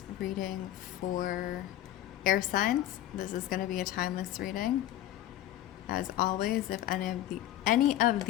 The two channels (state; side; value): quieter; right; 13.3 dB